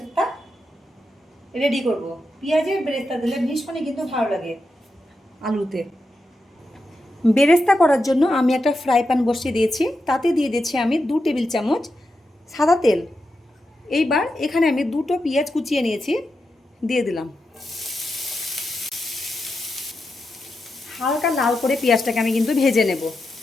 রেডি করব। পেঁয়াজের বেরেস্তা দিলে ভীষণই কিন্তু ভালো লাগে আলুতে। বেরেস্তা করার জন্য আমি একটা ফ্রাই প্যান বসিয়ে দিয়েছি। তাতে দিয়ে দিচ্ছি আমি 2 টেবিল চামচ সাদা তেল। এইবার এখানে আমি 2টো পেঁয়াজ কুচিয়ে নিয়েছি, দিয়ে দিলাম। হালকা লাল করে পেঁয়াজটাকে আমি কিন্তু ভেজে নেব,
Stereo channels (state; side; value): normal; both; correlation 0.87